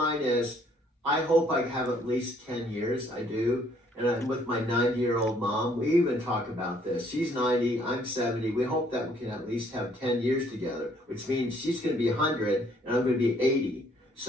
is, I hope I have at least 10 years. I do. And I'm with my 90-year-old mom. We even talk about this. She's 90, I'm 70. We hope that we can at least have 10 years together, which means she's going to be 100 and I'm going to be 80.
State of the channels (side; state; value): both; normal; correlation 0.64